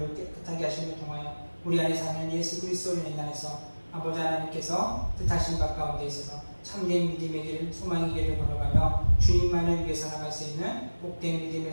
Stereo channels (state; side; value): inverted; both; correlation -1.00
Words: 깨끗하게 하심을 통하여 우리 안에 사는 예수 그리스도를 인하여서 아버지 하나님께서 뜻하신 바 가운데 있어서 참된 믿음의 길, 소망의 길을 걸어가며 주님만을 위해 살아갈 수 있는 복된